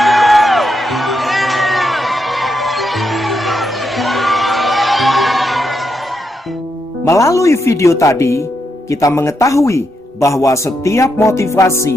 Melalui video tadi, kita mengetahui bahwa setiap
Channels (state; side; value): normal; both; correlation 0.82